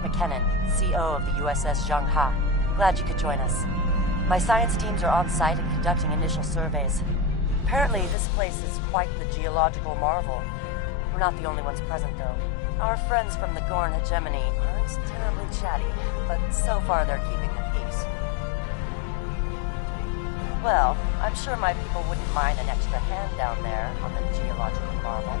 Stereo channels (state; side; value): drops out; right; at 8.2 s